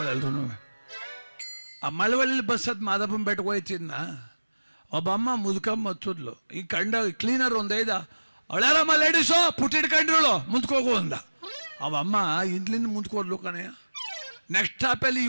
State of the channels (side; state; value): both; inverted; correlation -1.00